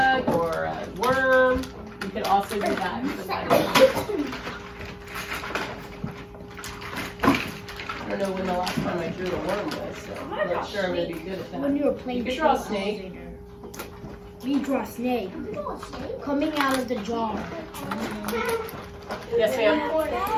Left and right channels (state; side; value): identical; both; correlation 1.00